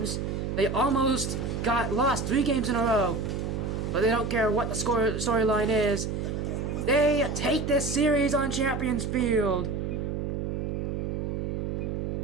They almost lost 3 games in a row. But they don't care what the storyline is. They take this series on Champions Field.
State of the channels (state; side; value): noise; right; hum, 2 dB below the sound